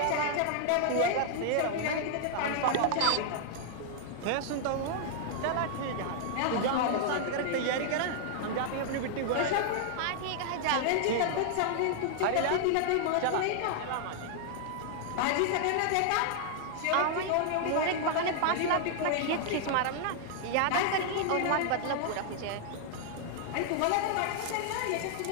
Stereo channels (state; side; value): different; both; correlation -0.01